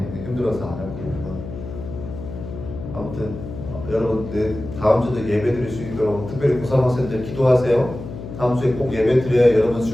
힘들어서 안 하고 아무튼 여러분 다음 주도 예배 드릴 수 있도록 특별히 고3 학생들 기도하세요. 다음 주에 꼭 예배 드려야 여러분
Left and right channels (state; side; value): noise; left; hum, 10 dB below the sound